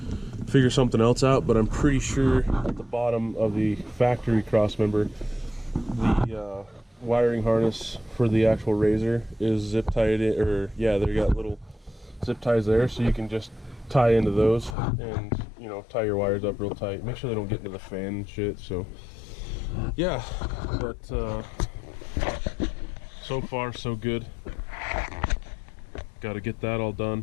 figure something else out, but I'm pretty sure at the bottom of the factory cross member, the wiring harness for the actual Rzr is zip tied in, or yeah, they got little zip ties there, so you can just tie into those and, you know, tie your wires up real tight. Make sure they don't get into the fan and shit. So yeah, but so far so good. Got to get that all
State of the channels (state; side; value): drops out; right; at 14.8 s